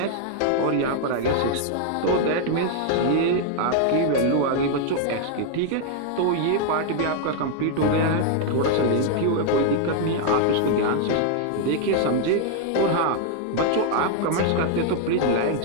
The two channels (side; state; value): both; different; correlation 0.00